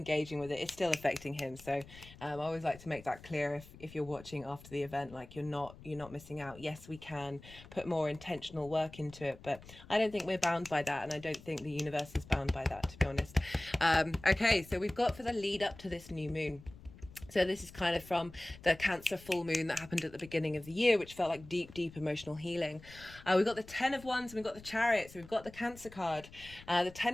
with it, it's still affecting him. So I always like to make that clear if you're watching after the event, like you're not missing out. Yes, we can put more intentional work into it, but I don't think we're bound by that, and I don't think the universe is bound by that, to be honest. Okay, so we've got for the lead up to this new moon. So this is kind of from the Cancer full moon that happened at the beginning of the year, which felt like deep emotional healing. We've got the 10 of Wands and we've got the Chariot. So we've got the Cancer card. The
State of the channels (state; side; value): noise; left; rumble, 19 dB below the sound